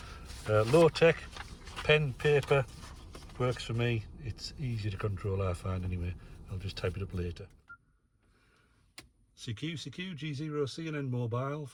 Low tech, pen, paper, works for me. It's easy to control, I find, anyway. I'll just type it up later. CQ G0 CNN mobile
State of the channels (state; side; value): identical; both; correlation 1.00